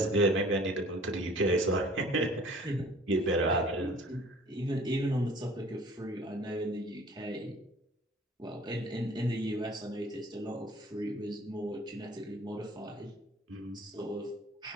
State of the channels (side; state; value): both; normal; correlation 0.51